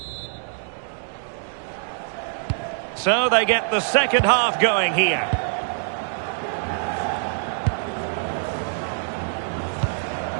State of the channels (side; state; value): left; silent; digital silence